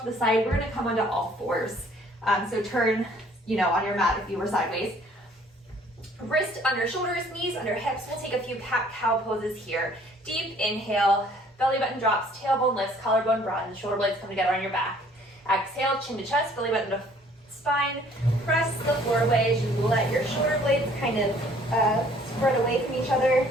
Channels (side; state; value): both; normal; correlation 0.58